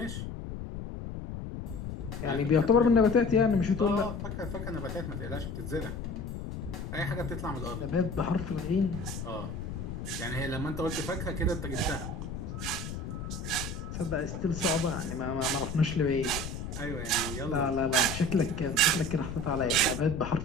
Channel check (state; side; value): noise; left; rumble, 7 dB below the sound